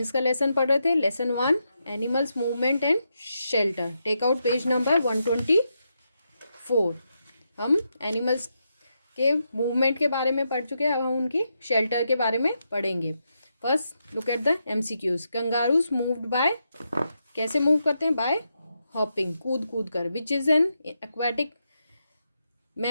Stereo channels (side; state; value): both; inverted; correlation -0.84